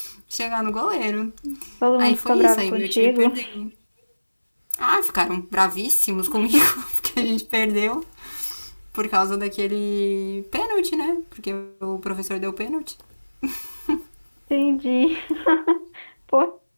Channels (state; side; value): inverted; both; correlation -1.00